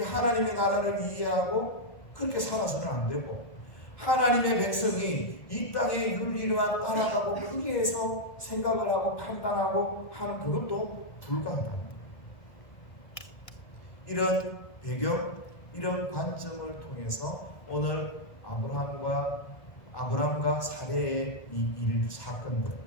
하나님의 나라를 이해하고 그렇게 살아서는 안 되고 하나님의 백성이 이 땅의 윤리와 따라가고 거기에서 생각을 하고 판단하고 하는 그것도 불가하다. 이런 배경, 이런 관점을 통해서 오늘 아브람과 사례의 이 사건들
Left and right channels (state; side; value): late; right; 1.1 ms